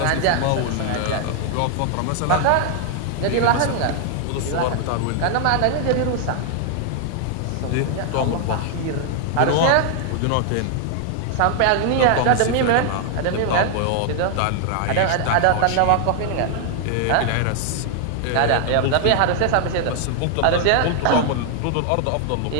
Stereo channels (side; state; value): both; different; correlation 0.00